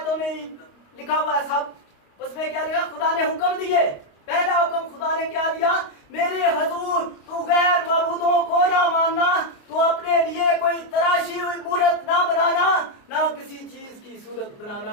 में लिखा हुआ है सब। उसमें क्या लिखा? खुदा ने हुक्म दिए। पहला हुक्म खुदा ने क्या दिया? मेरे हजूर तू गैर मबूदों को ना मानना, तू अपने लिए कोई तराशी हुई मूर्त ना बनाना, ना किसी चीज की सूरत बनाना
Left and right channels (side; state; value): right; late; 29 ms